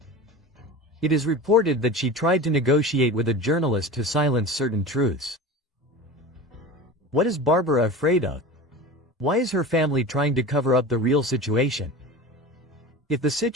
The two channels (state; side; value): normal; both; correlation 0.32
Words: It is reported that she tried to negotiate with a journalist to silence certain truths. What is Bárbara afraid of? Why is her family trying to cover up the real situation? If the